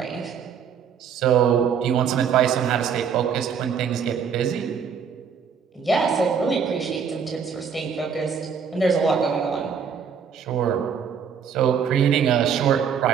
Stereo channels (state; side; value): quieter; left; 7.0 dB